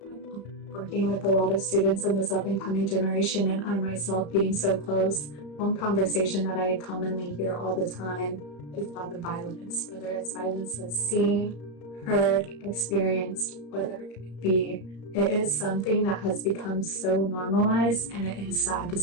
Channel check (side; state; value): right; late; 34 ms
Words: Working with a lot of students in this up-and-coming generation, and I myself being so close, one conversation that I commonly hear all the time is about the violence, whether it's violence that's seen, heard, experienced, whatever it be. It is something that has become so normalized, and it is sad to